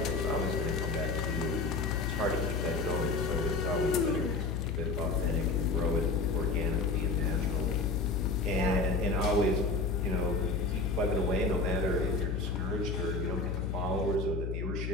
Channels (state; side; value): noise; left; hum, 2 dB below the sound